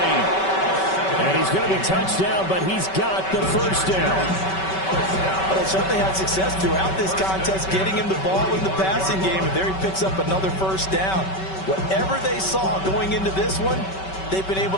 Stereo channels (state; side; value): late; right; 5.2 ms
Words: And he's going to be touched down, but he's got the first down. Well, they certainly had success throughout this contest, getting him the ball in the passing game, and there he picks up another first down. Whatever they saw going into this one, they've been able